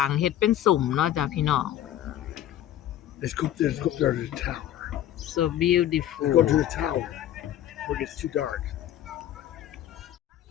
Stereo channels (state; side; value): quieter; right; 12.0 dB